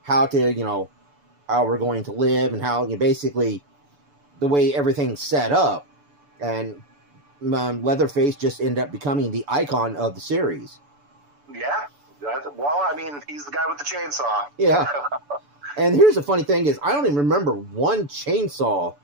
how we're going to live, and how basically the way everything's set up. And Leatherface just ended up becoming the icon of the series. Yeah. Well, I mean, he's the guy with the chainsaw. Yeah. And here's the funny thing is, I don't even remember one chainsaw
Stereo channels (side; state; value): left; late; 6.9 ms